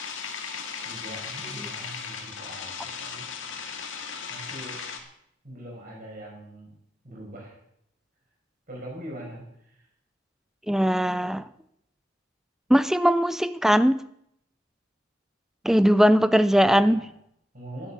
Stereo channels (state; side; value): normal; both; correlation 0.93